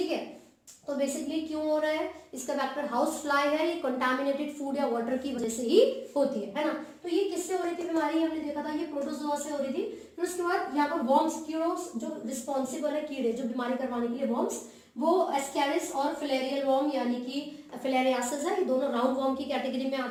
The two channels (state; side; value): identical; both; correlation 1.00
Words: है, तो बेसिकली क्यों हो रहा है, इसका फैक्टर हाउस फ्लाई है, ये कंटामिनेटेड फूड या वाटर की वजह से ही होती है ना। तो ये किससे हो रही थी बीमारी, हमने देखा था ये प्रोटोजोआ से हो रही थी। फिर उसके बाद यहाँ पर वॉर्म्स, जो रिस्पॉन्सिबल है कीड़े जो बीमारी करवाने के लिए वॉर्म्स, वो एस्कैरिस और फिलेरियल वॉर्म यानी कि फिलेरियासिस है, ये दोनों राउंड वॉर्म की कैटेगरी में